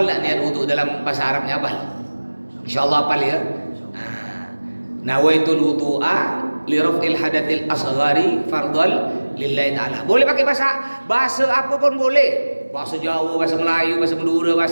lah niat wudhu dalam bahasa Arabnya apa? Insya Allah apa ya? Nawaitul wudu'a li raf'il hadatil asghari fardhal lillahi ta'ala. Boleh pakai bahasa apa pun boleh. Bahasa Jawa, bahasa Melayu, bahasa Madura,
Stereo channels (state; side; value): inverted; both; correlation -1.00